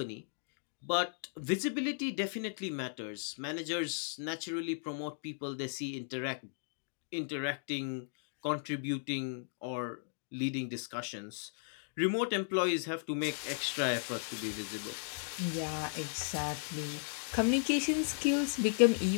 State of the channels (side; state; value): right; silent; digital silence